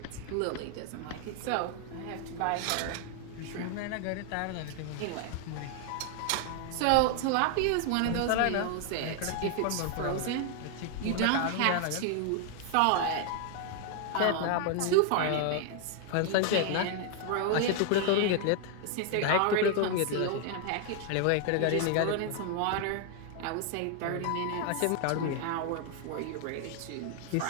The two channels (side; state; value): both; different; correlation 0.00